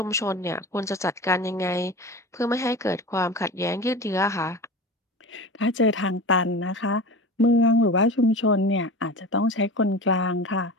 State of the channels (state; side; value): normal; both; correlation 0.32